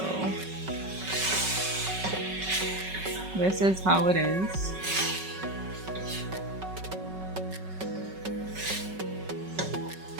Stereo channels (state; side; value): late; left; 5.3 ms